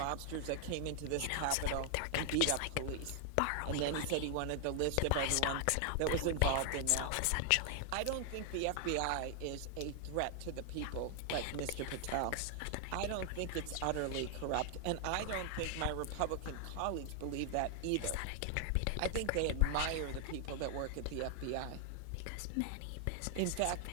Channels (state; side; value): different; both; correlation 0.00